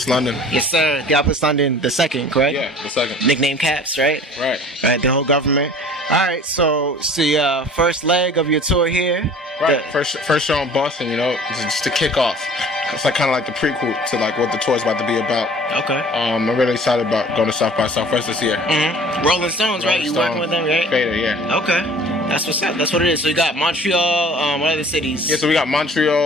London. Yes, sir. Theophilus London, the second, correct? Yeah, the second. Nickname Caps, right? Right. Right, the whole government. All right, so it's the first leg of your tour here. Right, first show in Boston, you know, just to kick off. It's like kind of like the prequel to like what the tour is about to be about. Okay. I'm really excited about going to South by Southwest this year. Mm-hmm. Rolling Stones, right? You working with them, right? Vader, yeah. Okay. That's what's up. That's what it is. So you got Montreal, what other cities? Yeah, so we got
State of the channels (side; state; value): both; normal; correlation 0.47